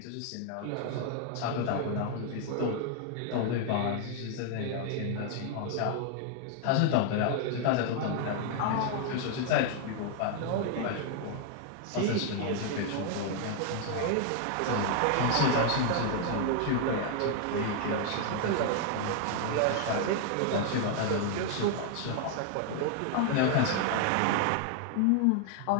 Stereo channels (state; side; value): different; both; correlation 0.00